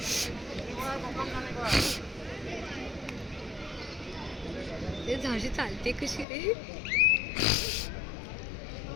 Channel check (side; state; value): right; drops out; at 6.2 s